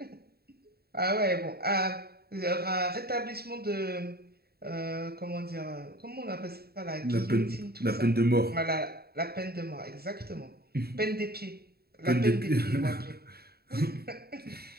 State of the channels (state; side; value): late; left; 0.45 ms